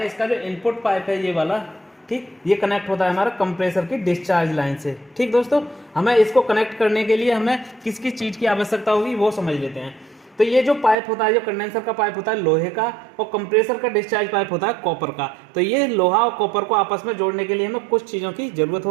इसका जो इनपुट पाइप है ये वाला, ठीक, ये कनेक्ट होता है हमारा कंप्रेसर की डिस्चार्ज लाइन से। ठीक दोस्तों, हमें इसको कनेक्ट करने के लिए हमें किस किस चीज़ की आवश्यकता होगी वो समझ लेते हैं। तो ये जो पाइप होता है, जो कंडेंसर का पाइप होता है लोहे का, और कंप्रेसर का डिस्चार्ज पाइप होता है कॉपर का। तो ये लोहा और कॉपर को आपस में जोड़ने के लिए हमें कुछ चीज़ों की जरूरत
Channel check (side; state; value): left; drops out; at 11.0 s